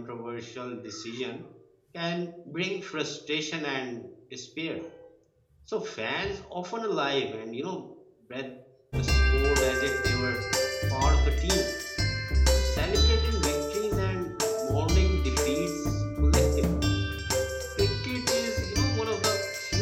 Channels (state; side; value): identical; both; correlation 1.00